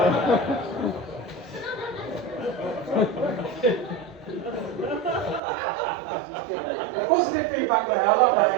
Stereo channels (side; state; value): left; drops out; at 5.4 s